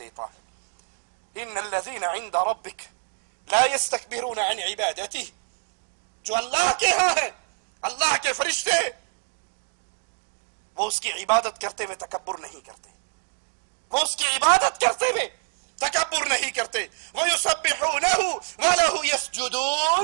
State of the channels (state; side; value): silent; left; digital silence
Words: ہے۔ ان الذين عند ربك لا يستكبرون عن عبادته جو اللہ کے ہاں ہے، اللہ کے فرشتے، وہ اس کی عبادت کرتے ہوئے تکبر نہیں کرتے، وہ اس کی عبادت کرتے ہوئے تکبر نہیں کرتے۔ وَيُسَبِّحُونَهُ وَلَهُ